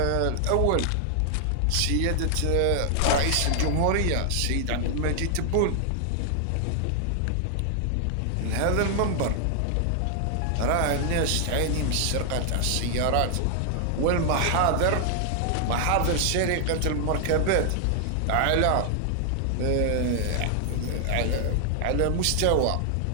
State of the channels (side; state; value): both; different; correlation 0.00